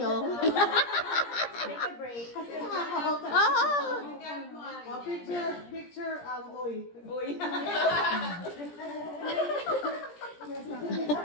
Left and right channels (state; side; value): late; right; 17 ms